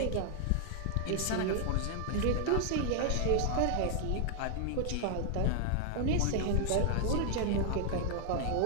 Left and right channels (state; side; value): different; both; correlation 0.00